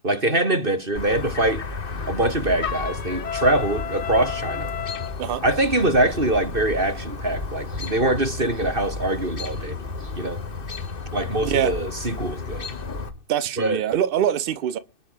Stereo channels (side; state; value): left; late; 2.6 ms